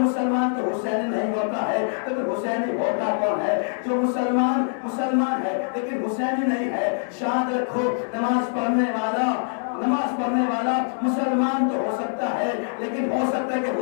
مسلمان تو حسینی نہیں ہوتا ہے، لیکن حسینی ہوتا کون ہے؟ جو مسلمان ہے لیکن حسینی نہیں ہے۔ شاد رکھو، نماز پڑھنے والا مسلمان تو ہو سکتا ہے، لیکن ہو سکتا ہے کہ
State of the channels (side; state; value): right; silent; digital silence